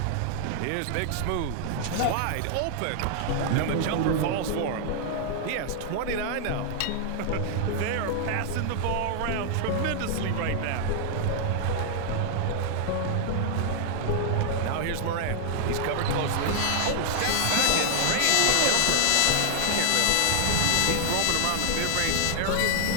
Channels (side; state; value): both; different; correlation 0.00